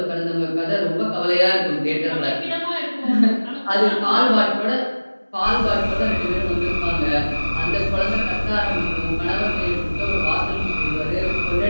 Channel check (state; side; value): inverted; both; correlation -1.00